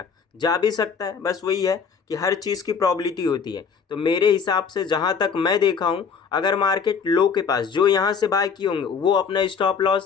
जा भी सकता है, बस वही है कि हर चीज़ की प्रॉबिलिटी होती है। तो मेरे हिसाब से जहाँ तक मैं देखा हूँ, अगर मार्केट लो के पास, जो यहाँ से बाय किए होंगे वो अपना स्टॉप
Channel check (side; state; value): right; quieter; 6.1 dB